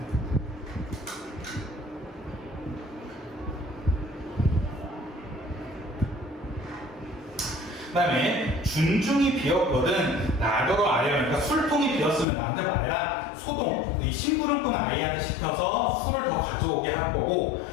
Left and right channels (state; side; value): drops out; right; at 12.2 s